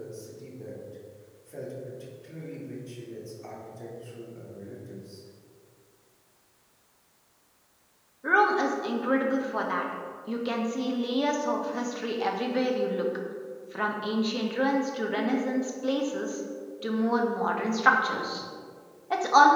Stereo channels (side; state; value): both; identical; correlation 1.00